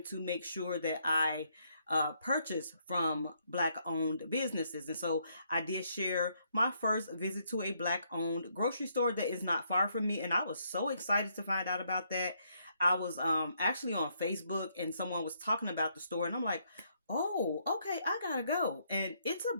to make sure that I purchase from Black owned businesses. And so I did share my first visit to a Black owned grocery store that is not far from me. And I was so excited to find out about that. I was actually on Facebook and someone was talking about the store, and I'm like, oh, okay, I gotta go. And it's a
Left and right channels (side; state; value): both; inverted; correlation -0.73